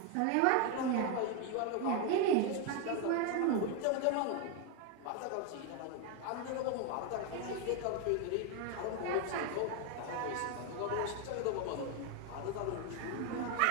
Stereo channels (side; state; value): both; different; correlation 0.01